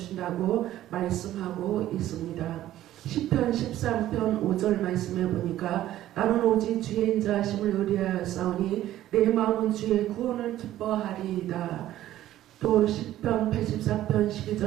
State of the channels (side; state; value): left; quieter; 13.5 dB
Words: 말씀하고 있습니다. 시편 13편 5절 말씀에 보니까 나는 오직 주의 인자하심을 의뢰하였사오니 내 마음은 주의 구원을 기뻐하리이다. 또 시편 84편